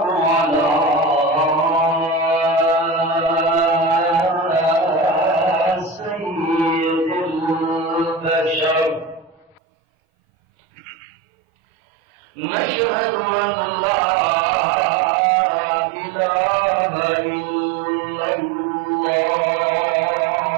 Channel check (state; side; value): drops out; left; at 9.6 s